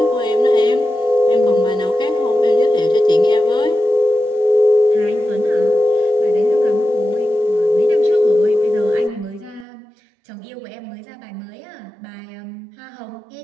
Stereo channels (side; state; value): left; drops out; at 9.7 s